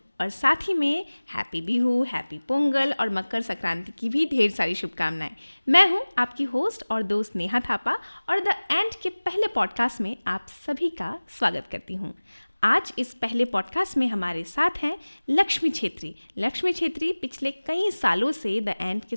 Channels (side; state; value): both; inverted; correlation -1.00